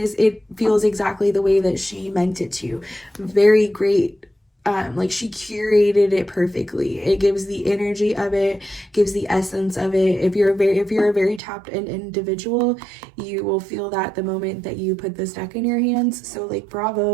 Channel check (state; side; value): drops out; left; at 11.4 s